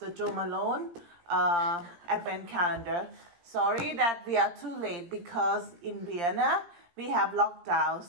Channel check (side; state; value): left; late; 17 ms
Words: Jo Malone Advent Calendar. Sorry that we are too late because in Vienna we have lockdown.